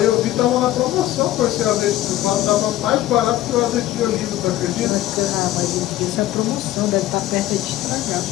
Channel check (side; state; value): right; quieter; 14.5 dB